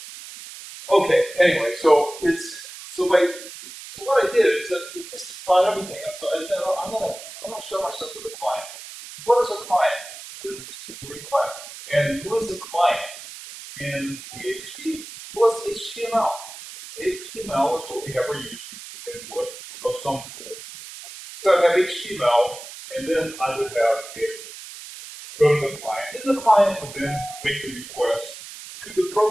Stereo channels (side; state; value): right; noise; hiss, 13 dB below the sound